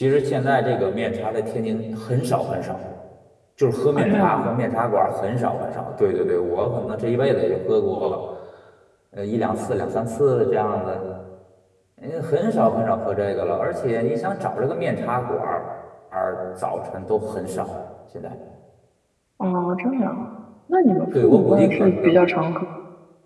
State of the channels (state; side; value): identical; both; correlation 1.00